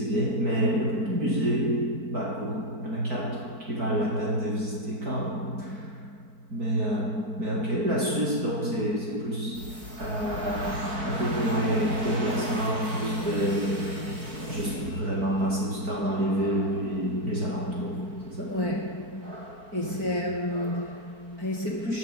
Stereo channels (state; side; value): late; left; 4.5 ms